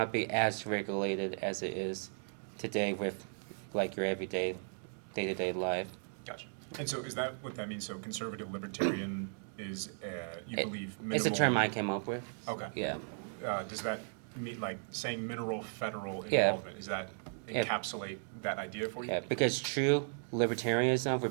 be as regulated as it is today with like your everyday day-to-day life. Gotcha. And so is that what that means? So conservative libertarian is, you believe minimal? It's a term I came up with. Okay. Yeah. Does that mean, like, saying minimal federal Yeah. involvement, does that encapsulate that idea for you? Yeah, because true libertarianism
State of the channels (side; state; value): left; silent; 54 dB below the other